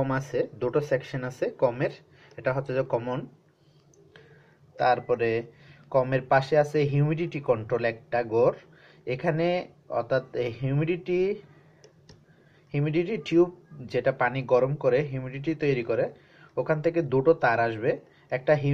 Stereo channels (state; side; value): identical; both; correlation 1.00